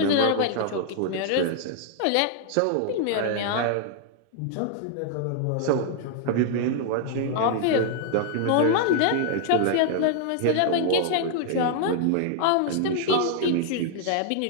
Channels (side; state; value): both; different; correlation 0.00